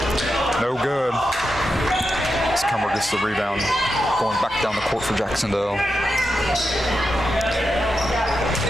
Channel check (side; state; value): both; normal; correlation 0.88